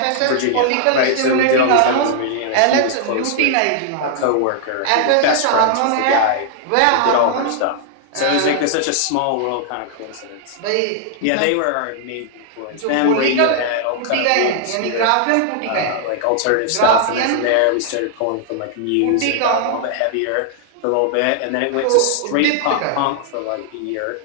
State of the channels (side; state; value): both; different; correlation -0.01